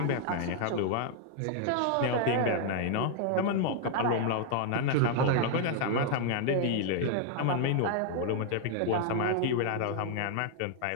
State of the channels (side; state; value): both; different; correlation 0.00